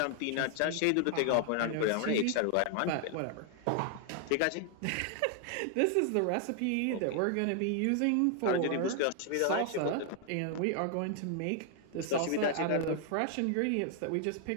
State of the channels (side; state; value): both; different; correlation 0.00